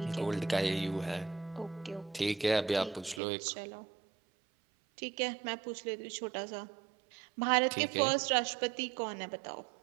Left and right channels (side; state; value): left; drops out; at 3.2 s